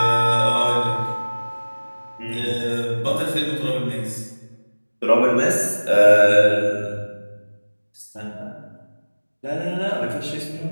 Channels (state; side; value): inverted; both; correlation -1.00